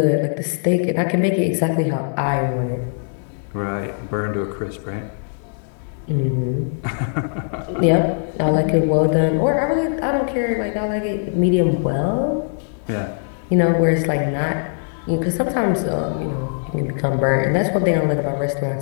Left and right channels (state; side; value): silent; right; 60 dB below the other